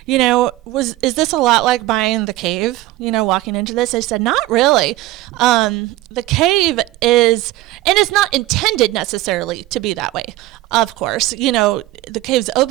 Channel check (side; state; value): left; quieter; 17.1 dB